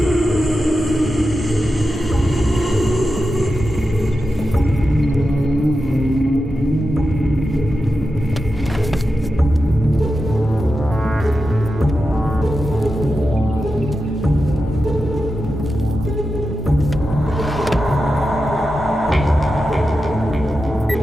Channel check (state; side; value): normal; both; correlation 0.90